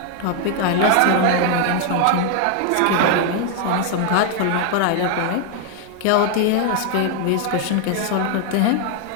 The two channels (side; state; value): both; different; correlation 0.00